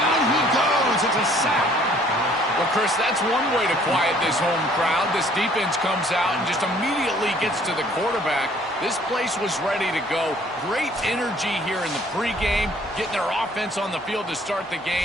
he goes. It's a sack. Well, Chris, that's one way to quiet this home crowd. This defense comes out and just immediately gets to the quarterback. This place was ready to go. Great energy here in the pregame, getting their offense on the field to start the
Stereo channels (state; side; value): normal; both; correlation 0.58